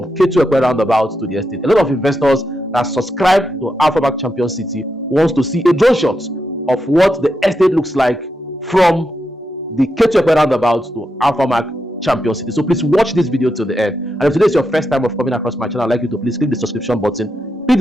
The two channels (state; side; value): normal; both; correlation 0.85